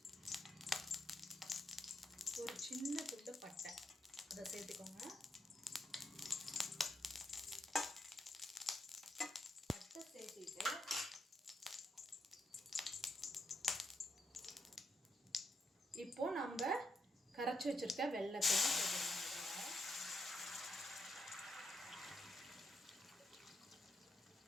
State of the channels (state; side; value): normal; both; correlation 0.80